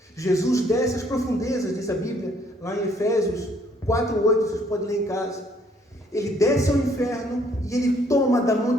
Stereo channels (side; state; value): both; normal; correlation 0.65